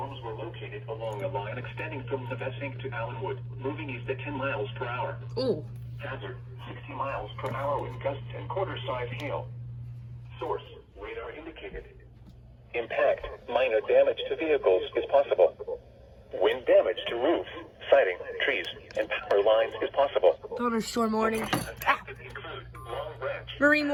were located along a line extending from Navesink to Allenwood, moving east at 10 miles per hour. Ooh. Hazard, 60 miles per hour with gusts and quarter-size hail. Source, radar indicated. Impact, minor damage to vehicles is possible. Wind damage to roofs, siding, trees, and power lines is possible. Thunderstorm warning. Impacted include Long Branch, Marine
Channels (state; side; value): identical; both; correlation 1.00